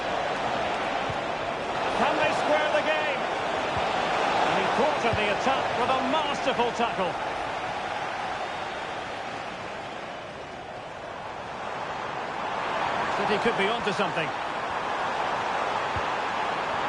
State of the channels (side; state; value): both; identical; correlation 1.00